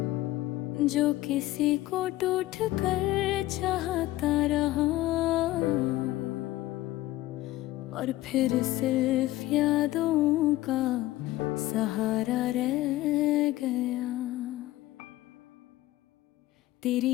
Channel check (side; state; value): right; quieter; 16.6 dB